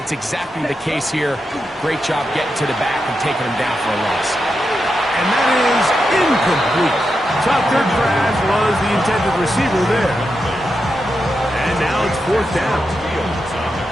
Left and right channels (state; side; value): normal; both; correlation 0.87